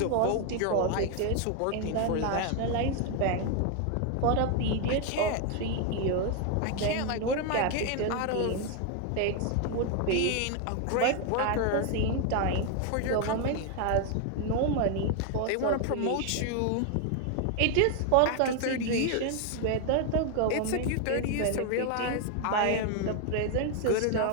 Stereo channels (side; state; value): both; different; correlation 0.01